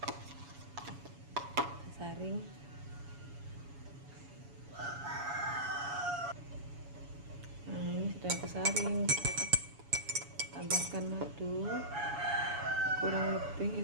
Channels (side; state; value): left; late; 7.1 ms